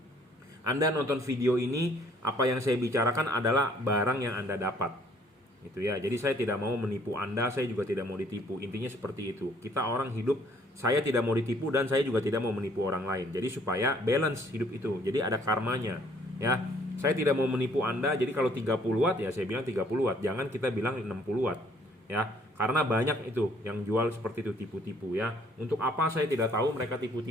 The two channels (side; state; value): both; normal; correlation 0.62